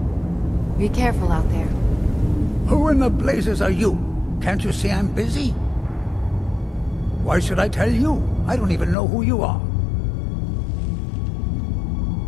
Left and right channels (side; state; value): right; drops out; at 9.0 s